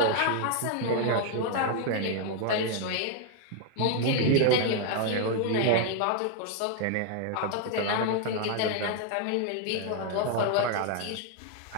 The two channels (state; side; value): different; both; correlation 0.00